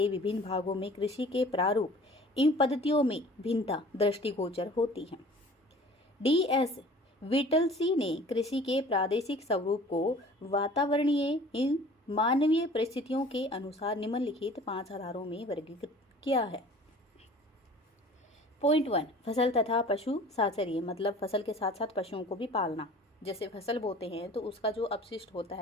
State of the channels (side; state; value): both; normal; correlation 0.47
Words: विभिन्न भागों में कृषि के प्रारूप इन पद्धतियों में भिन्नता दृष्टिगोचर होती है। DS विटलसी ने कृषि के प्रादेशिक स्वरूप को वातावरणीय एवं मानवीय परिस्थितियों के अनुसार निम्नलिखित 5 आधारों में वर्गीकृत किया है। पॉइंट 1 फसल तथा पशु साचर्य, मतलब फसल के साथ साथ पशुओं को भी पालना। जैसे फसल बोते हैं तो उसका जो अपशिष्ट होता